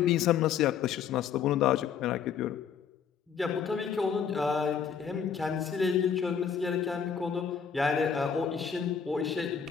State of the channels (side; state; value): right; quieter; 7.2 dB